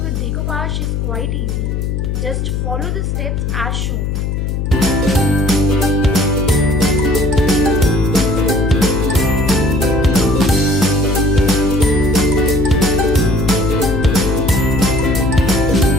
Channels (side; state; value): left; noise; hum, 1 dB below the sound